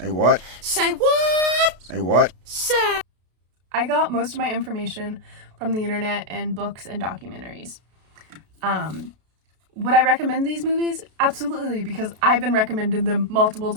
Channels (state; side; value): late; left; 32 ms